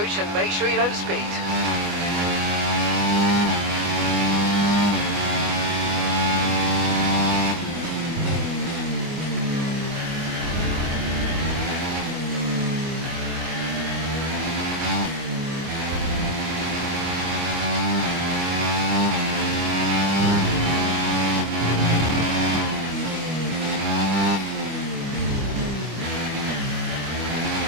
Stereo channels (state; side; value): late; left; 25 ms